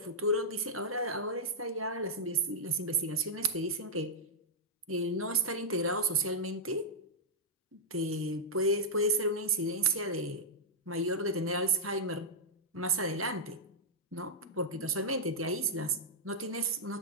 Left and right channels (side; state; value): both; normal; correlation -0.08